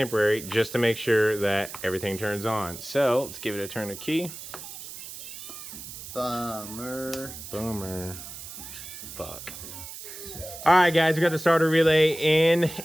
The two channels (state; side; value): noise; right; hiss, 12 dB below the sound